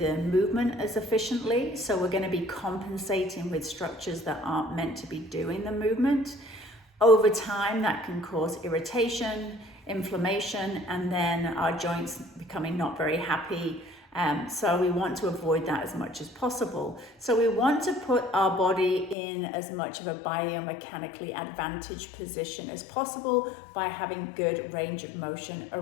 movement as efficiently. So we're going to be compensating with structures that aren't meant to be doing the movement. Over time, that can cause irritation, inflammation, and then our joints becoming not very happy. So we want to avoid that as much as possible. So we want to put our body in as much of a biomechanically advantaged position as possible by having good range of motion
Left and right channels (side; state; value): right; drops out; at 19.2 s